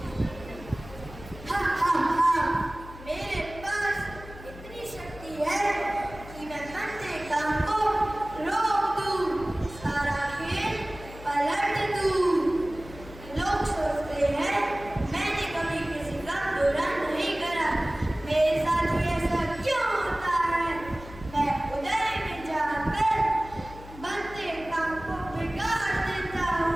मेरे पास इतनी शक्ति है कि मैं बनते काम को रोक दूं, सारा खेल पलट दूं। लोग सोचते हैं मैंने कभी किसी का बुरा नहीं करा, मेरे साथ ही ऐसा क्यों होता है? मैं उदय में जाकर बनते काम को बिगाड़ देता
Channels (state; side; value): noise; left; hum, 16 dB below the sound